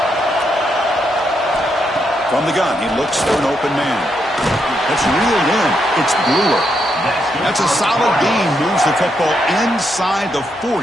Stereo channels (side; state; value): both; normal; correlation 0.79